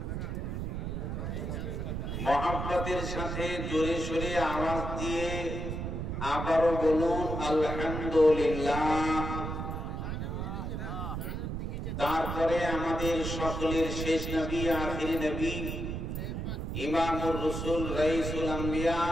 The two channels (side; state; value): right; noise; rumble, 4 dB below the sound